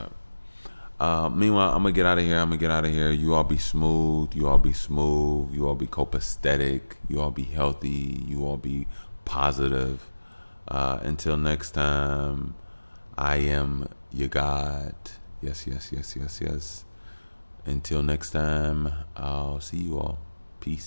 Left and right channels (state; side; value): inverted; both; correlation -1.00